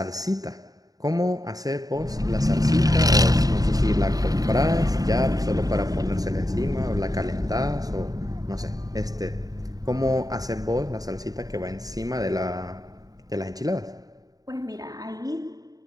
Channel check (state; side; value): late; left; 0.18 ms